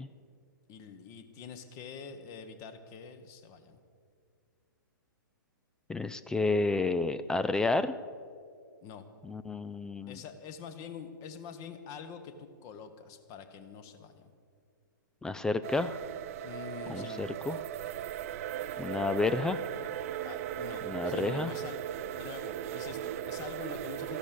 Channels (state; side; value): normal; both; correlation 0.51